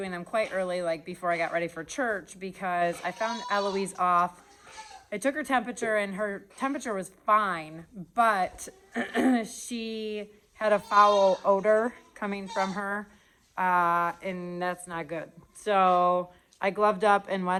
them quite early, like before I got ready for church, because I found Eloise off. I took her temperature and her temperature was fine, but she had a foul odor coming from her, and that's not good. So I gloved up and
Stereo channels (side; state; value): both; identical; correlation 1.00